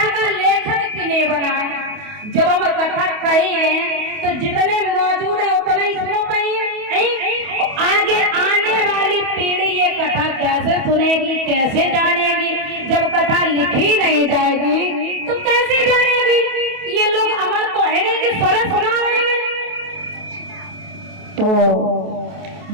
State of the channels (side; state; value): left; late; 28 ms